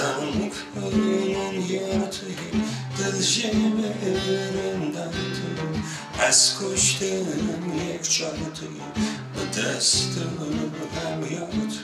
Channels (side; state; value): both; identical; correlation 1.00